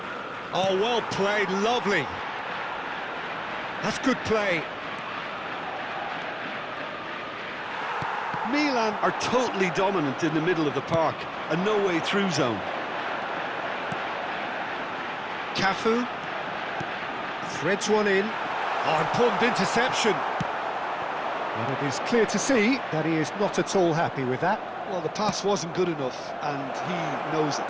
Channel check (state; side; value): identical; both; correlation 1.00